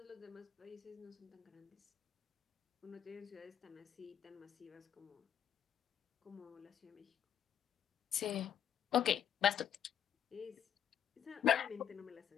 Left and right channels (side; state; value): right; quieter; 9.4 dB